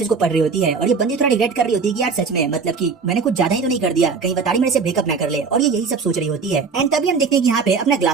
को पढ़ रही होती है और ये बंदी थोड़ा रिग्रेट कर रही होती है कि यार सच में मतलब कि मैंने कुछ ज्यादा ही तो नहीं कर दिया, कहीं बताड़ी मेरे से ब्रेकअप ना कर ले, और ये यही सब सोच रही होती है। एंड तभी हम देखते हैं कि यहाँ पे अपना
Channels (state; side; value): quieter; left; 5.1 dB